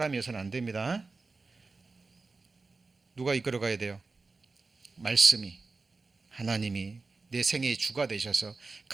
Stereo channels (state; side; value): quieter; left; 3.9 dB